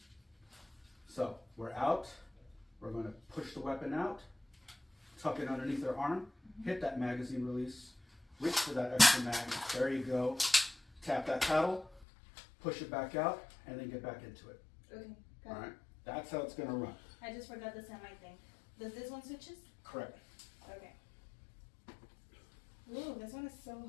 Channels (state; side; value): drops out; right; at 12.1 s